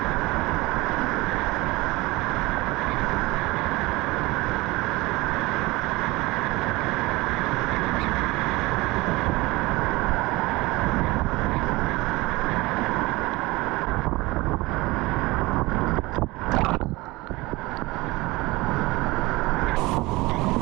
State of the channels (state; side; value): quieter; left; 21.7 dB